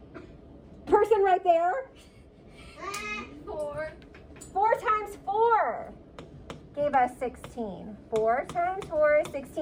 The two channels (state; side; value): identical; both; correlation 1.00